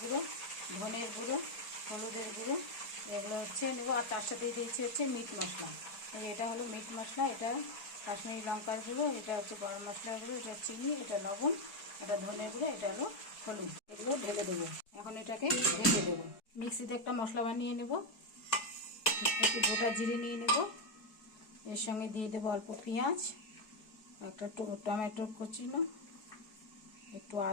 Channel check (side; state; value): right; late; 4.7 ms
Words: ধনের গুঁড়ো, হলুদের গুঁড়ো, এগুলো নেবো। আর তার সাথে দিয়েছি মিট মশলা। এটা হলো মিট মশলা, এটা কাশ্মীরি লঙ্কার গুঁড়ো, এটা গরম মশলার গুঁড়ো, এটা চিনি, এটা লবণ, এটা ধনের গুঁড়ো, এটা হলো হলুদ। এগুলো ঢেলে দেবো। এখন এটাকে ঢেকে দেবো। মিক্সিতে একটা মশলা বানিয়ে নেব। একটু গোটা জিরে নিয়ে নেব। এর সঙ্গে দিয়ে দেবো অল্প পেঁয়াজ, একটা টমেটো কুচিনো, একটু